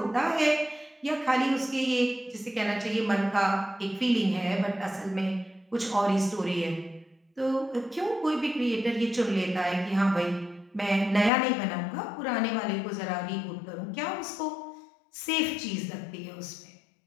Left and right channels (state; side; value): drops out; right; at 11.3 s